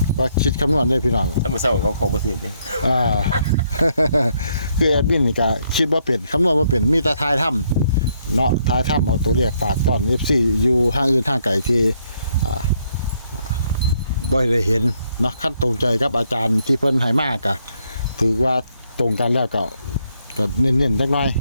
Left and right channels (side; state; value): both; inverted; correlation -0.73